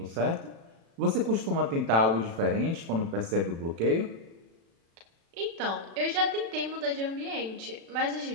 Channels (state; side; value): late; left; 36 ms